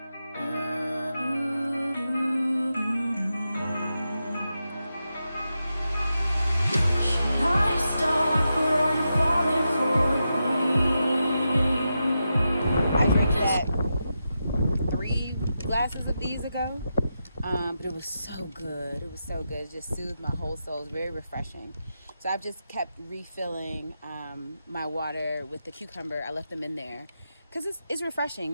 Should I stop or are you falling for me? I drank that 3 glasses of these ago, but it was so good. It was so good. It just soothed my whole soul. It was very refreshing. So I've just kept refilling my water with the cucumber. I left them in there because it's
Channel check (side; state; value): both; inverted; correlation -0.88